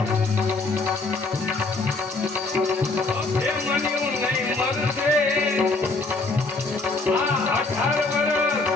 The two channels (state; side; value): quieter; right; 3.5 dB